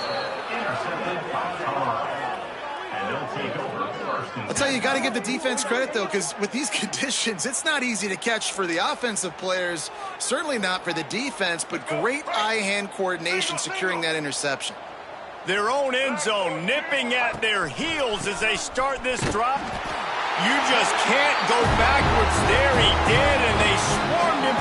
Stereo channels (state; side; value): identical; both; correlation 1.00